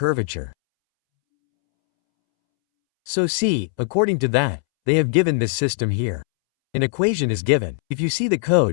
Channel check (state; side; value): silent; right; 65 dB below the other